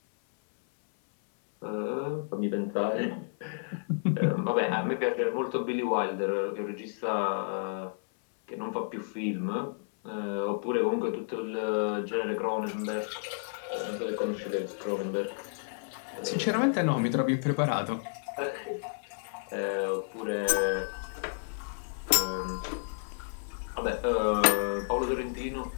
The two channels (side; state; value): right; silent; 57 dB below the other